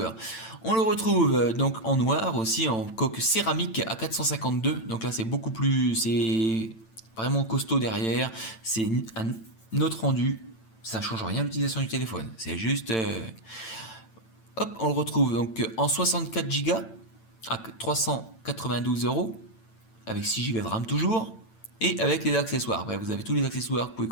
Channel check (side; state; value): right; late; 9.0 ms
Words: On le retrouve donc en noir aussi, en coque céramique à 452, donc là c'est beaucoup plus, c'est vraiment costaud derrière, c'est un autre rendu, ça change rien à l'utilisation du téléphone, c'est juste... Hop, on le retrouve donc en 64 Go à 392 €, avec 6 Go de RAM toujours, et avec les accessoires. Bref, vous avez tous les accessoires que vous pouvez